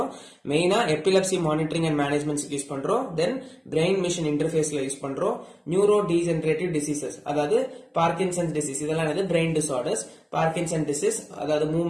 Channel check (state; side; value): identical; both; correlation 1.00